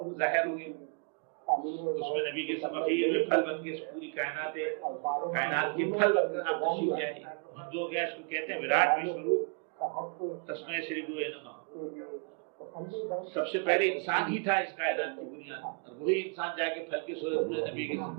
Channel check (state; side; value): quieter; left; 39.1 dB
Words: ظاہر ہو گیا، اس میں نبی کے سمخیر میں پھل بن کے پوری کائنات کے پھل بن کر آپ تشریف لے آئے، ہندوؤں کے اس کو کہتے ہیں وراٹ وشوروپ تسمے سری گرو نمہ، سب سے پہلے انسان ہی تھا اس کائنات کی بنیاد، اور وہی انسان جا کے پھل کی صورت میں نبی کے وجود